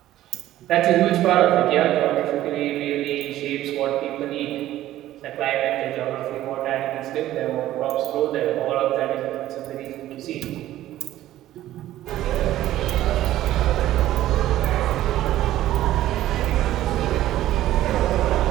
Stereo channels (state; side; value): quieter; left; 14.0 dB